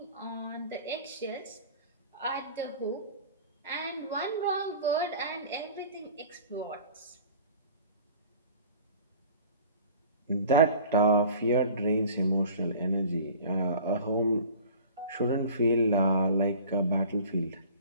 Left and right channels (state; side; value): inverted; both; correlation -0.44